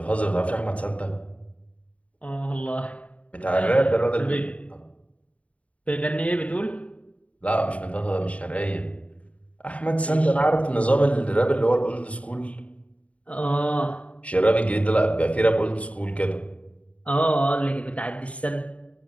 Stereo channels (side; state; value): right; late; 0.066 ms